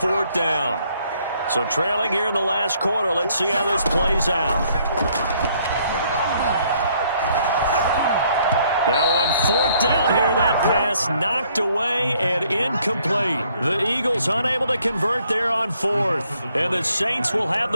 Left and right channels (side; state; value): both; inverted; correlation -0.67